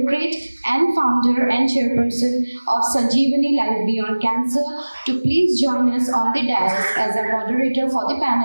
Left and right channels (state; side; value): inverted; both; correlation -1.00